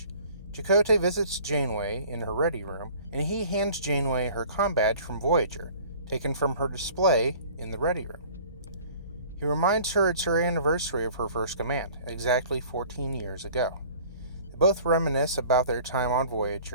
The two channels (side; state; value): both; inverted; correlation -0.48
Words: Chakotay visits Janeway in her ready room, and he hands Janeway her comm badge from Voyager, taken from her display in the ready room. He reminds her it's her anniversary of her first command, exactly 14 years ago. They both reminisce about their time on